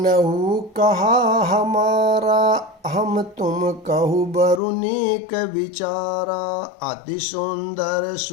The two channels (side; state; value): right; drops out; at 4.6 s